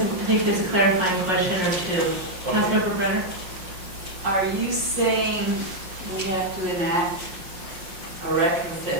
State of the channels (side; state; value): left; late; 5.6 ms